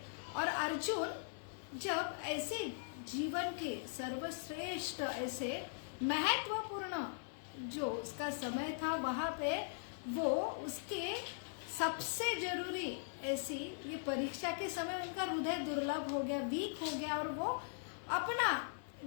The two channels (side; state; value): right; silent; 51 dB below the other